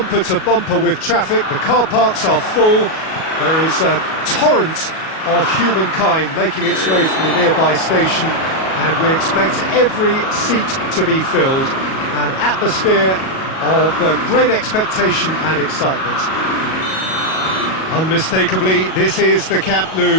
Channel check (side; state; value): right; late; 37 ms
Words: to bumper with traffic. The car parks are full. There is a torrent of humankind making its way from the nearby station, and we expect every seat to be filled. An atmosphere of great expectation and excitement. Unmistakably, this is the Camp